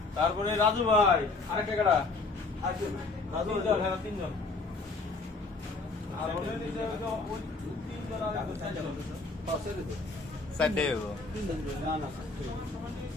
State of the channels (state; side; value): quieter; right; 3.7 dB